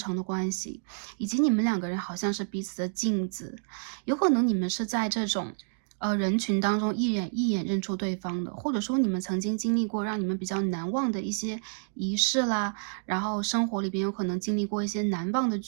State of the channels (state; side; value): silent; left; digital silence